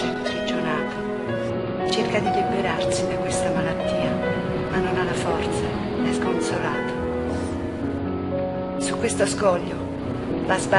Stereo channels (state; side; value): identical; both; correlation 1.00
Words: imprigionato. Cerca di liberarsi da questa malattia, ma non ha la forza, è sconsolato. Su questo scoglio va a